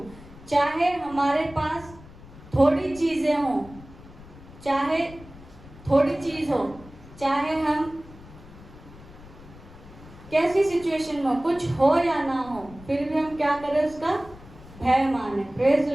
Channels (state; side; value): noise; left; rumble, 19 dB below the sound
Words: चाहे हमारे पास थोड़ी चीजें हो, चाहे थोड़ी चीज हो, चाहे हम कैसी सिचुएशन में हो, कुछ हो या ना हो, फिर भी हम क्या करें? उसका भय माने। Praise